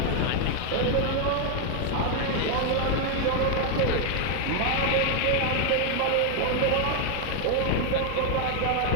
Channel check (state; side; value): different; both; correlation 0.01